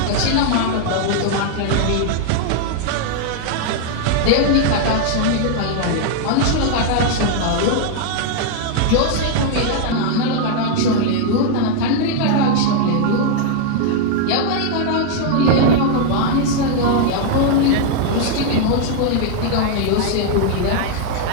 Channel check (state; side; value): different; both; correlation 0.00